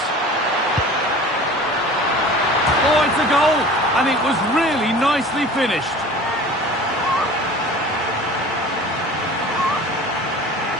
Oh, it's a goal, and it was really nicely finished.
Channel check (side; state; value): both; normal; correlation 0.41